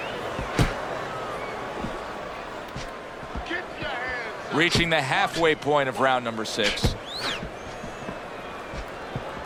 Reaching the halfway point of round number 6.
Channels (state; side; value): identical; both; correlation 1.00